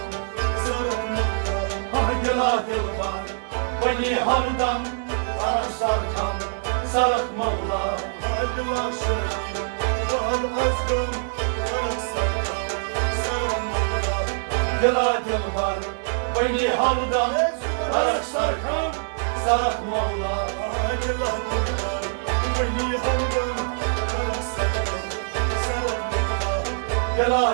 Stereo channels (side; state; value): left; silent; digital silence